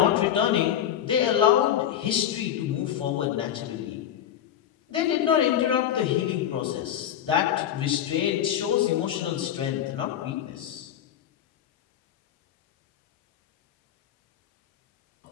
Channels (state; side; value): quieter; right; 10.4 dB